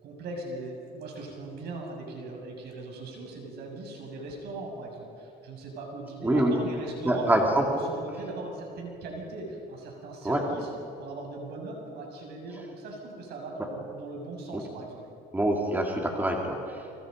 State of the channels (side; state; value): both; normal; correlation 0.66